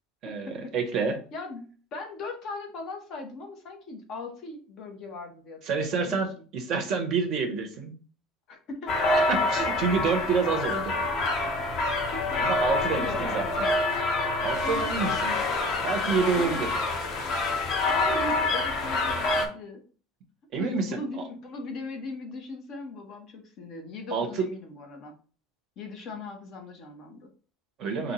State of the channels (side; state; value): both; normal; correlation 0.42